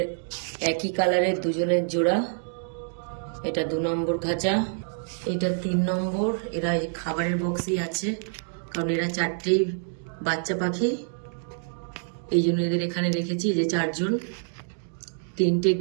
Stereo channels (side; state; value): left; silent; digital silence